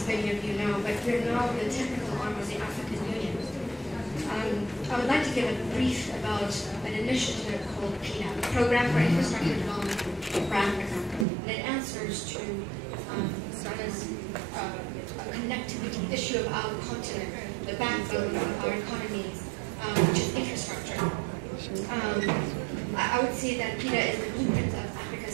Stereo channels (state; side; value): drops out; left; at 11.2 s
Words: many of you know, but we're now the technical arm of the African Union. I would like to give a brief about an initiative called PIDA, Program for Infrastructure Development for Africa. And it answers to a connectivity issue of our continent, the backbone of our economies, which is infrastructure. I would say that PIDA is the blueprint of